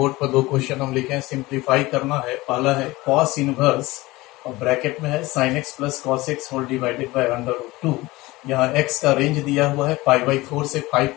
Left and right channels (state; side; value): quieter; right; 20.3 dB